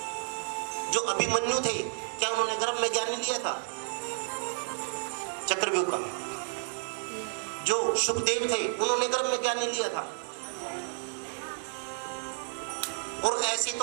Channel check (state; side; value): silent; left; digital silence